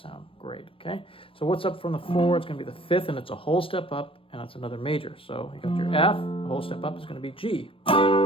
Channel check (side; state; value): right; late; 0.26 ms